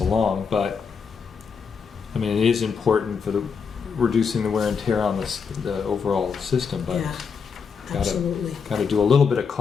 but I mean, it is important for the reducing the wear and tear on the overall system, but Yeah, gotta- absolutely. got to do a little bit of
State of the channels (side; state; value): right; quieter; 5.9 dB